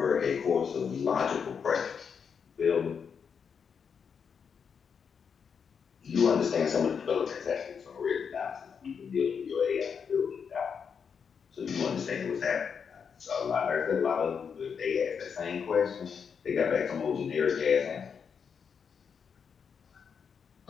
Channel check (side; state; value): right; quieter; 6.6 dB